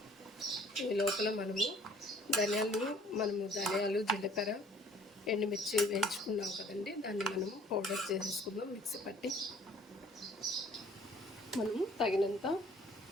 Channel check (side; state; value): both; normal; correlation 0.56